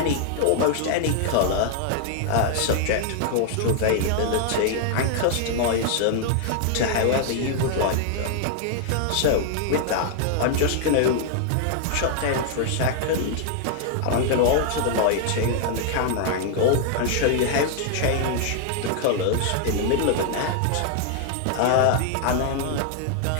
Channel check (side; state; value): both; different; correlation 0.00